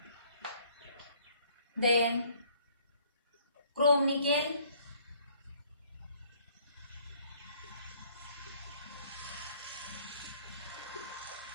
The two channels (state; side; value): inverted; both; correlation -0.61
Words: then chrome nickel,